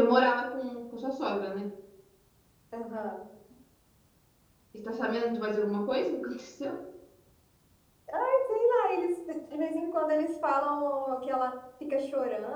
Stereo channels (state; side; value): identical; both; correlation 1.00